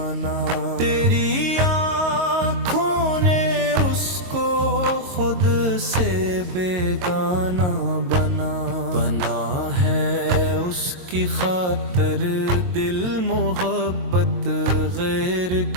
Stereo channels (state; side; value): late; left; 22 ms